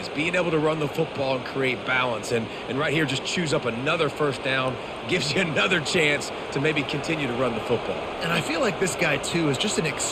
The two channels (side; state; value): both; identical; correlation 1.00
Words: Being able to run the football and create balance. And right here, just choose up another first down. Gives you another chance to maybe continue to run the football. And I feel like this guy, too, is just an